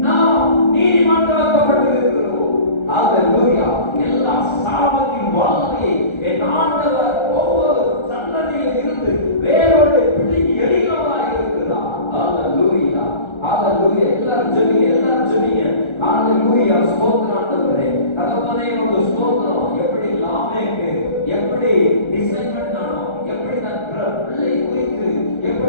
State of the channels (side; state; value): right; late; 1.3 ms